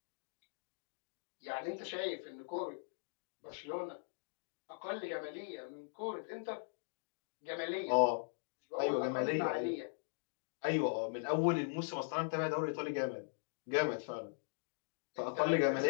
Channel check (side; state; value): right; silent; digital silence